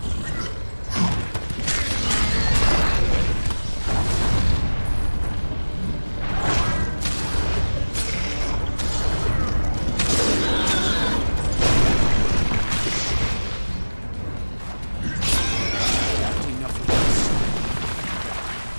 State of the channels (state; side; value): inverted; both; correlation -1.00